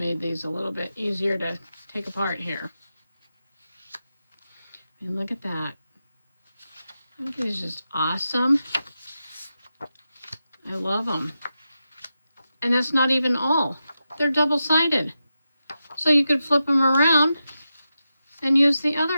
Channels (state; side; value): inverted; both; correlation -0.89